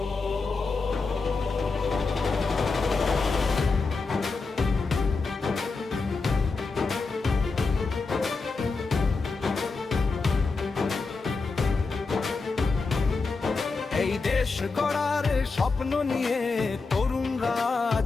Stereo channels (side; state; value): right; quieter; 4.1 dB